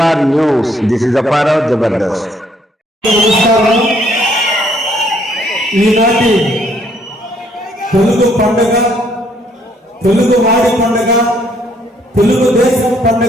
news. This is Apparao Jabardasth. ఈనాటి తెలుగు పండుగ, తెలుగు వాడి పండుగ, తెలుగు దేశం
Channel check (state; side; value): normal; both; correlation 0.67